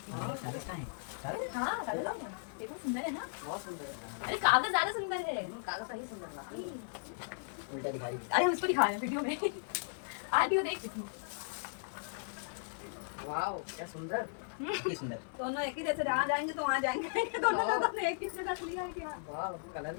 कहाँ हैं? सारे? हाँ कागज है। देखो सुंदर है ना, बहुत सुंदर है अरे कागज ज्यादा सुंदर है। कागज सही सुंदर लगा उल्टा दिखा रही अरे हम इसको दिखा रहे हैं वीडियो में, आंटी तो देख चुकी। वाओ क्या सुंदर है। ये सुंदर। दोनों एक ही जैसे जहाँ जाएंगे तो वहाँ जाएंगे दोनों लोगों ने एक ही जगह से लिया है क्या वाह कलर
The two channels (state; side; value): silent; right; 54 dB below the other